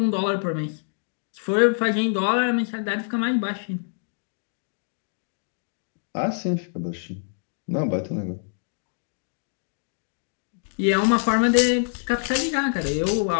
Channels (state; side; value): silent; right; digital silence